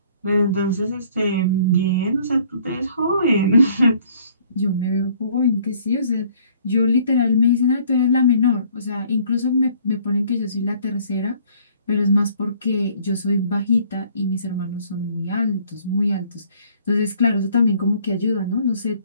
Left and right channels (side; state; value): both; inverted; correlation -0.59